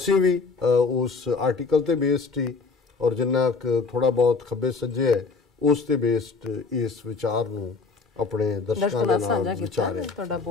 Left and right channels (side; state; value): right; quieter; 4.4 dB